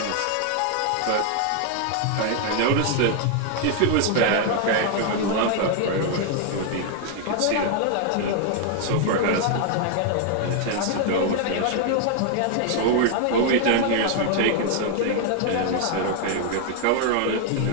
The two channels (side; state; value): both; different; correlation 0.00